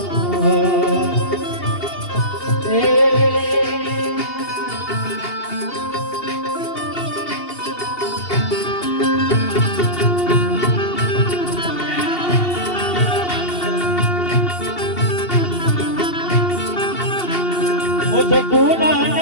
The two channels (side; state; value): right; late; 2.8 ms